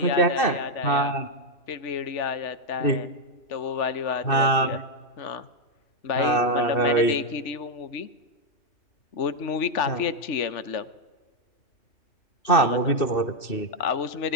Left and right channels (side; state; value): right; late; 2.6 ms